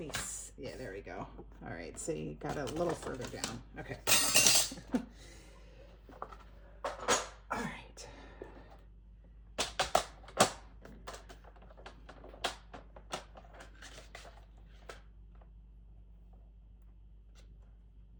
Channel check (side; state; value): both; identical; correlation 1.00